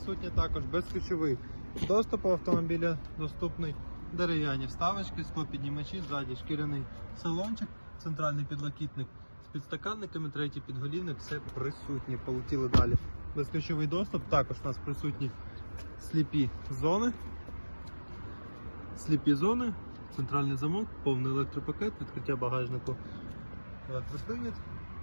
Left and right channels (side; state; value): both; inverted; correlation -1.00